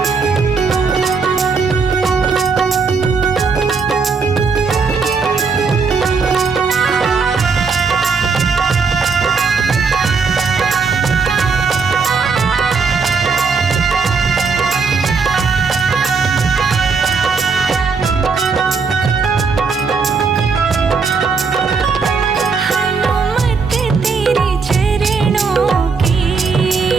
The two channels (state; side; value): quieter; left; 5.0 dB